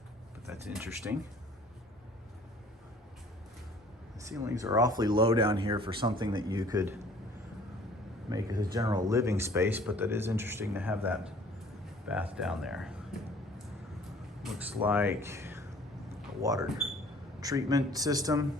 but that's interesting. The ceilings are awfully low down here for something that you could make as a general living space, but that is interesting to have that bath down there. Looks like a water treatment system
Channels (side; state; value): both; normal; correlation 0.53